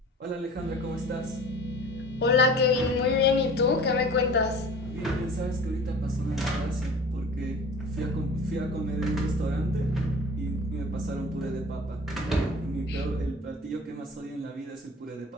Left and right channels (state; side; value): normal; both; correlation 0.42